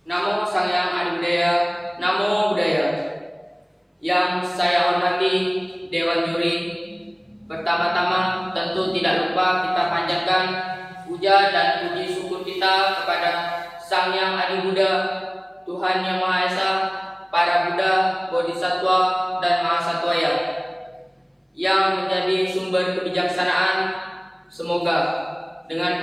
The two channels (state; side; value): identical; both; correlation 1.00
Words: Namo Sang Hyang Adi Budaya, Namo Budaya. Yang saya hormati Dewan Juri, pertama-tama tentu tidak lupa kita panjatkan puja dan puji syukur kita kepada Sang Hyang Adi Buddha, Tuhan Yang Maha Esa, para Buddha, Bodhisattva, dan Mahasatwaya yang menjadi sumber kebijaksanaan. Semoga dengan